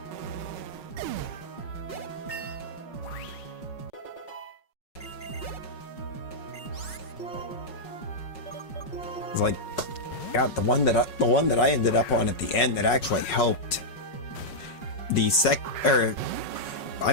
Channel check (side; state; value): right; late; 5.5 ms